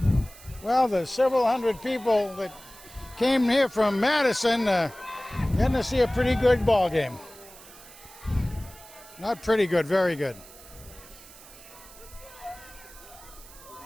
Well, the several hundred people that came here from Madison getting to see a pretty good ball game. Not pretty good, very good.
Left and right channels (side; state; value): right; noise; hiss, 20 dB below the sound